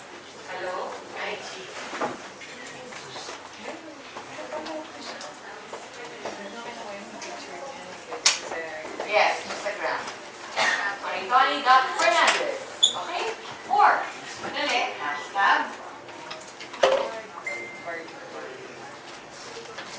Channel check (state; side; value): identical; both; correlation 1.00